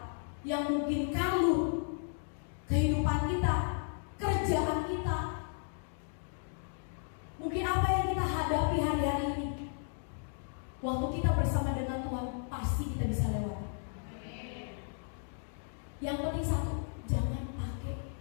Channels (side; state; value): right; silent; 55 dB below the other